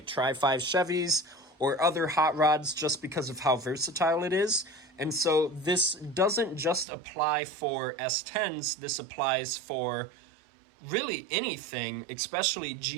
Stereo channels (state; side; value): drops out; left; at 6.9 s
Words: Tri-5 Chevys or other hot rods just because of how versatile it is. And so this doesn't just apply for S10s, this applies for really anything, especially